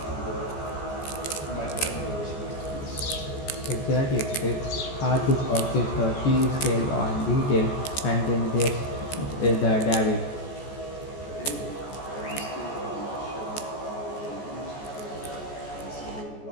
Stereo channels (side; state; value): right; late; 14 ms